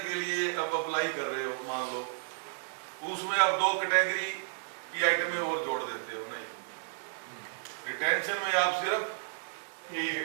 के लिए अब अप्लाई कर रहे हो, मान लो उसमें आप 2 कैटेगरी की आइटमें और जोड़ देते हो, नहीं, रिटेंशन में आप सिर्फ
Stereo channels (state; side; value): silent; left; digital silence